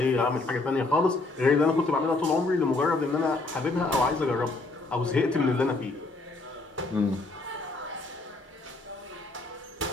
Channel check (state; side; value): quieter; right; 3.3 dB